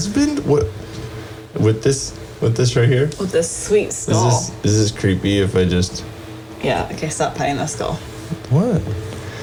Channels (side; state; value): both; identical; correlation 1.00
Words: What? With this right here? With this sweet skull. Is this creepy if I just... Yeah, okay, stop petting the skull. What?